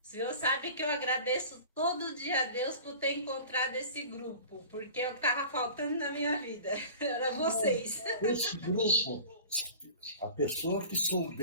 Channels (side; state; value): both; inverted; correlation -0.40